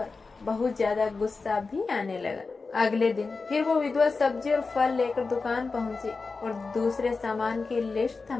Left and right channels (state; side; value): quieter; right; 4.2 dB